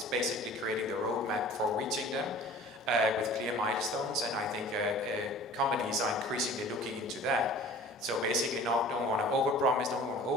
basically creating the roadmap for reaching them with clear milestones, and I think companies are increasingly looking into that. So basically don't want to overpromise, don't want to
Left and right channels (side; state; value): both; normal; correlation 0.45